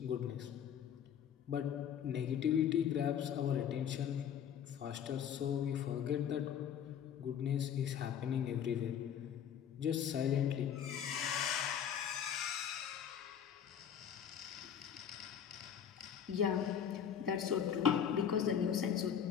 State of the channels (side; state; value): right; quieter; 8.6 dB